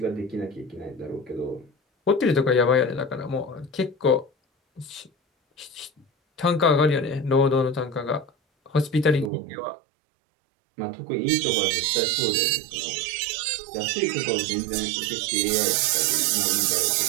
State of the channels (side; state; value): left; drops out; at 9.3 s